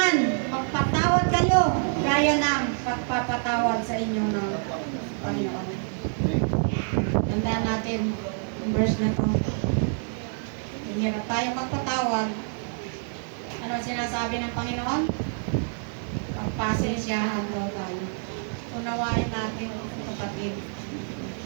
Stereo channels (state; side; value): silent; left; 57 dB below the other